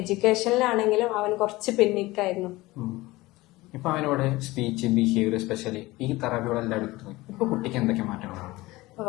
അവൻ കുറച്ച് പിന്നിക്കായിരുന്നു. ഇപ്പൊ അവനോട് സ്പീച്ച്, ബിഹേവിയർ, സ്പെഷ്യലി ഈ തെറാപ്പികളെല്ലാം എടുക്കുന്നത് ഇപ്പൊ കുട്ടിക്ക് എന്തൊക്കെ മാറ്റങ്ങളാണ്?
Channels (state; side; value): quieter; right; 19.9 dB